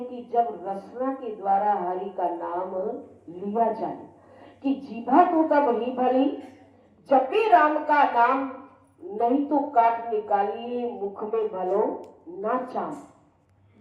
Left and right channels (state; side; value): identical; both; correlation 1.00